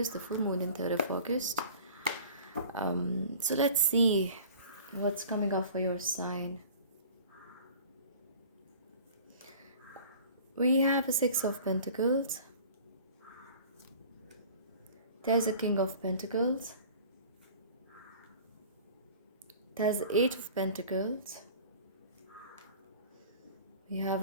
the full moon in 3rd of August. So let's see what's coming up for your sign. We have a Six of Pentacles. There's a King of Pentacles. There's the Eight of Pentacles. We have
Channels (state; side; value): inverted; both; correlation -0.44